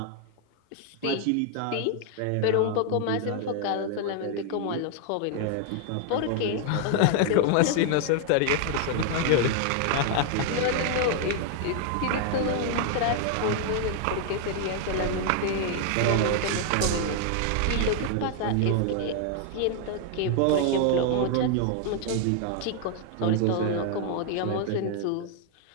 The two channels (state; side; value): different; both; correlation 0.00